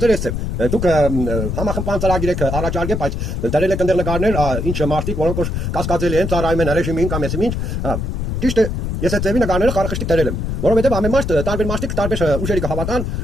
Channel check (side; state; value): left; noise; rumble, 2 dB below the sound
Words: էր էստեղ։ Դուք համախմբան ծրագիր եք առաջարկել, բայց դրել եք ընդեր նկարներ, ինչ մարդիկ, որոնք որ կասկածելի են ծառայում են ռեժիմին կամ էսի ինչ, ճիշտ է։ Ես այդ ձևի նկարները խարխշտիկ դրել եմ, որովհետև ամեն մարդ տարբեր մարդիկ տարբեր ուժերի կհավատան,